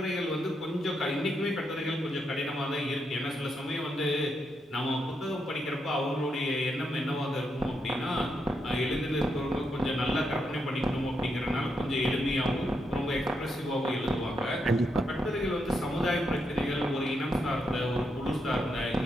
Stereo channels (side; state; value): both; normal; correlation 0.81